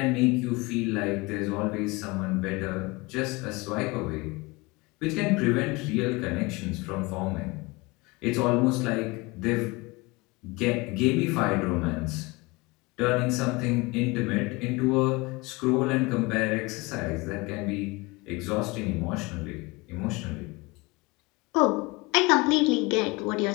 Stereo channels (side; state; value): right; quieter; 24.5 dB